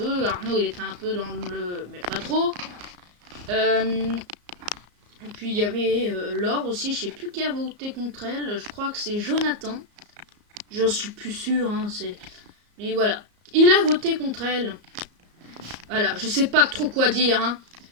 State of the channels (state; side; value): late; left; 34 ms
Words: Arnaud, il était un peu dans le... Mais pas trop. Et puis, il y avait Laure aussi. Je sais plus qui a voté contre elle. Je crois que c'est Jonathan. Je suis plus sûre, hein, mais voilà. Il a voté contre elle. Voilà, je sais pas trop quoi dire, hein.